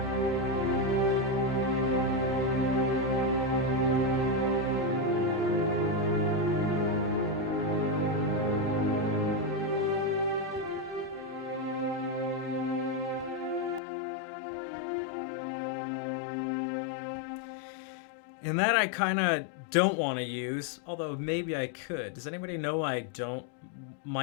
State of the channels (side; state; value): right; drops out; at 13.8 s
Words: And that I kind of don't want to use, although maybe I could. Does anybody know I